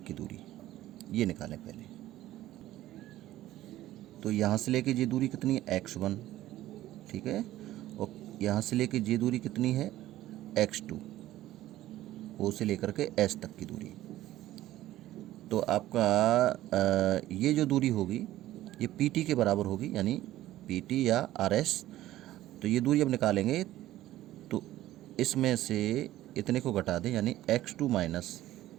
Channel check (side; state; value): left; quieter; 14.6 dB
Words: की दूरी, ये निकालें पहले। तो यहाँ से लेके ये दूरी कितनी है? x1, ठीक है, और यहाँ से लेके ये दूरी कितनी है? x2, O से लेकर के S तक की दूरी। तो आपका ये जो दूरी होगी ये PT के बराबर होगी, यानी PT या RS। तो ये दूरी अब निकालेंगे, तो इसमें से इतने को घटा दें, यानी x2 -